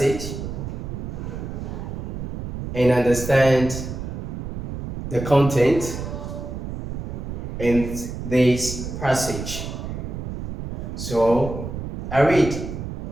and understand the content in this passage. So I read.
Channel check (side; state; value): right; noise; rumble, 6 dB below the sound